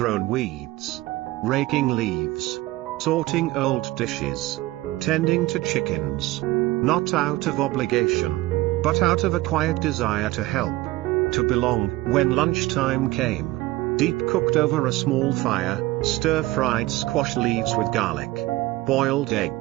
weeds, raking leaves, sorting old dishes, tending to chickens, not out of obligation, but out of a quiet desire to help, to belong. When lunchtime came, Diep cooked over a small fire, stir-fried squash leaves with garlic, boiled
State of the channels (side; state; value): left; quieter; 18.5 dB